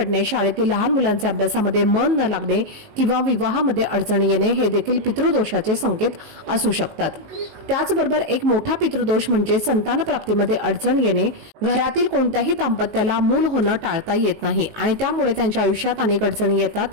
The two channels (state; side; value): late; left; 19 ms